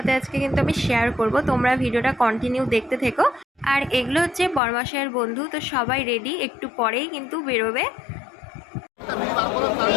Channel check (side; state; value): right; drops out; at 4.6 s